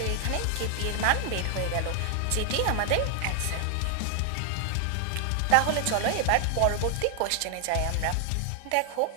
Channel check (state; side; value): different; both; correlation 0.00